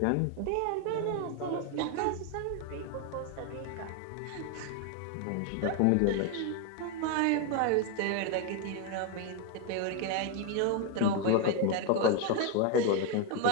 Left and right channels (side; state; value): both; different; correlation 0.01